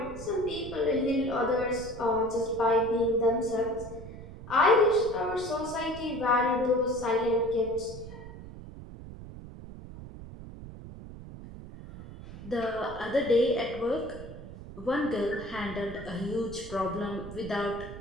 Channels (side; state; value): right; noise; rumble, 13 dB below the sound